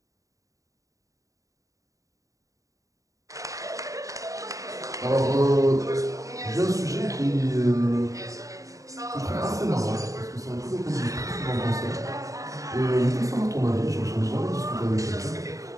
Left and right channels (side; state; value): left; late; 0.16 ms